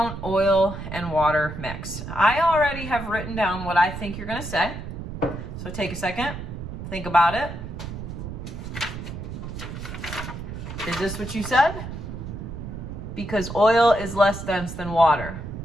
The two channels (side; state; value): right; noise; rumble, 8 dB below the sound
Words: oil and water mix? I already have written down what I think you're going to say. So take a second, think about it. Is this what you said? Because oil is less dense than water.